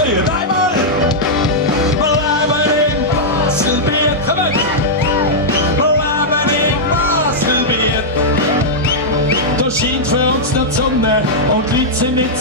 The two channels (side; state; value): both; normal; correlation -0.07